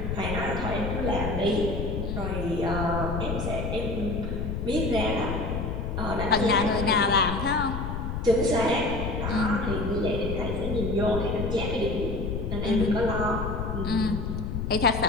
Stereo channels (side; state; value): left; noise; rumble, 3 dB below the sound